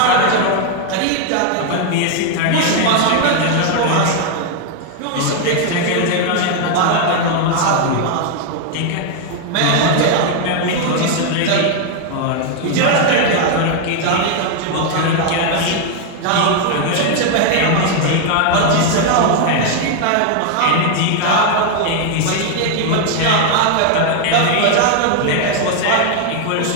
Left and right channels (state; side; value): different; both; correlation 0.01